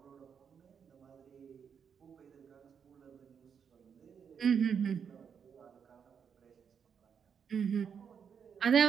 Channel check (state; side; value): quieter; left; 7.1 dB